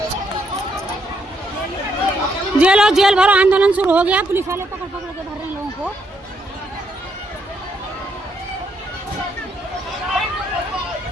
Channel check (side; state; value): both; normal; correlation 0.75